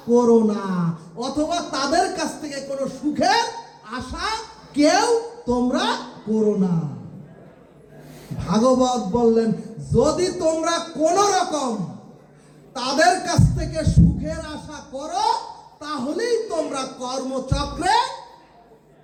করো না, অথবা তাদের কাছ থেকে কোনো সুখের আশা কেউ তোমরা করো না। ভাগবত বললেন, যদি তোমরা কোন রকম তাদের কাছ থেকে সুখের আশা করো, তাহলেই তোমরা কর্মচক্রে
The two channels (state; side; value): identical; both; correlation 1.00